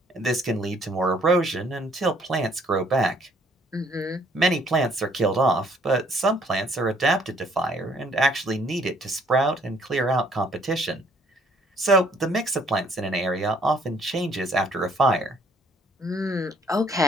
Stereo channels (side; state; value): both; normal; correlation 0.62